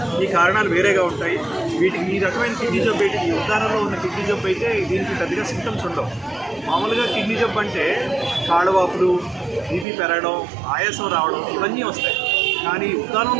ఈ కారణాలు వేరేగా ఉంటాయి. వీటికి ఈ రకమైన కిడ్నీ జబ్బు అయితే, ఈ ఉద్దానంలో ఉన్న కిడ్నీ జబ్బు అయితే దీనికి పెద్దగా సింటమ్స్ ఉండవు. మామూలుగా కిడ్నీ జబ్బు అంటే కాళ్ళవాపులు, బీపీ పెరగడం, ఆయాసం రావడం, ఇవన్నీ వస్తాయి. కానీ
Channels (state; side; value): drops out; left; at 9.9 s